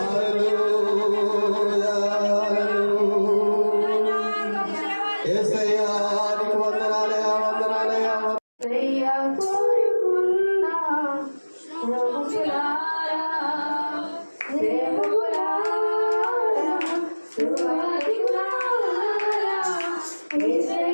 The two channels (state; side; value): inverted; both; correlation -1.00